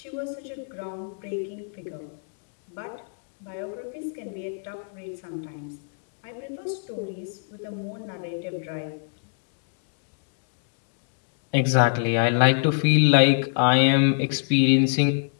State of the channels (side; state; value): right; silent; digital silence